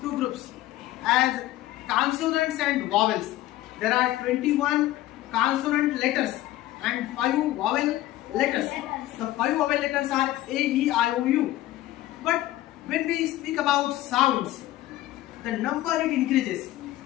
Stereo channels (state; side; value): quieter; right; 15.4 dB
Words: two groups as consonants and vowels. There are 21 consonant letters and 5 vowel letters. The 5 vowel letters are A, E, I, O, U. But when we speak about sounds, the number it increases.